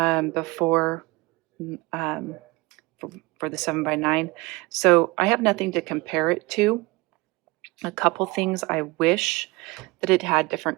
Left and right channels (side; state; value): left; quieter; 23.2 dB